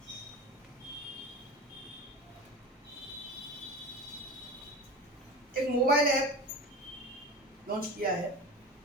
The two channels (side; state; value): both; normal; correlation 0.30